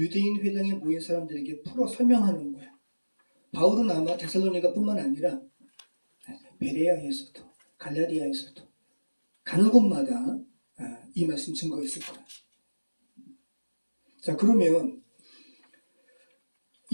회당에 모인 사람들에게 풀어 설명하는 거야. 바울은 아마 데살로니가뿐만 아니라 베레아에서도 갈라디아에서도 가는 곳마다 이 말씀 증거했을 거야. 자, 그러면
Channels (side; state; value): both; inverted; correlation -1.00